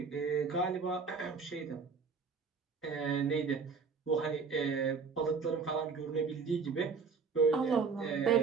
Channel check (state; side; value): quieter; left; 5.2 dB